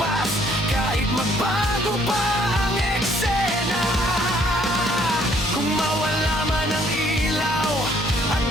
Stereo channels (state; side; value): normal; both; correlation 0.64